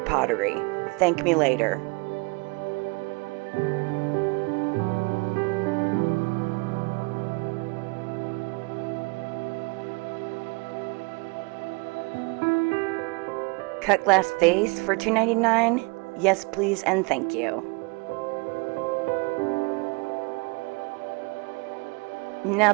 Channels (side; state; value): left; quieter; 29.0 dB